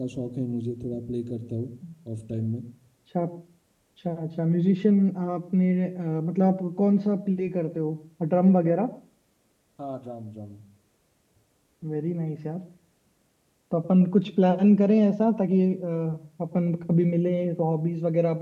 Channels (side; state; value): both; identical; correlation 1.00